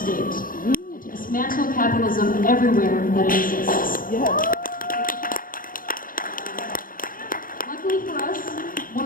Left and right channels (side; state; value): right; late; 0.40 ms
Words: and to dismantle capitalism everywhere that it exists. Luckily for us,